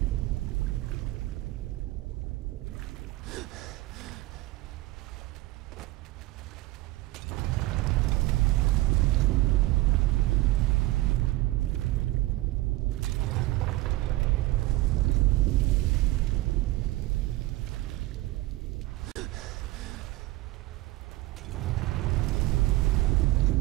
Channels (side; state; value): left; quieter; 18.5 dB